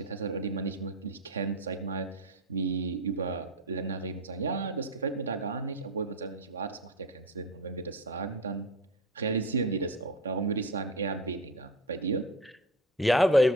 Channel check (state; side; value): normal; both; correlation 0.26